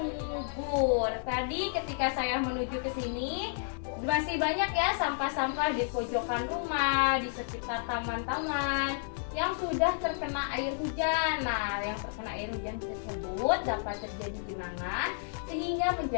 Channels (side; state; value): right; silent; digital silence